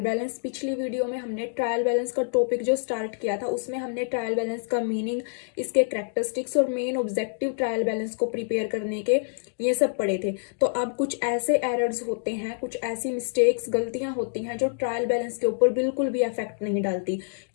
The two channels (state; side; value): silent; right; digital silence